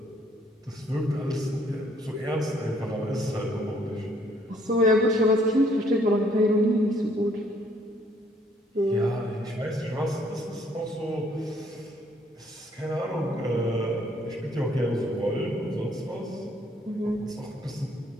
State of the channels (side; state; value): both; normal; correlation 0.65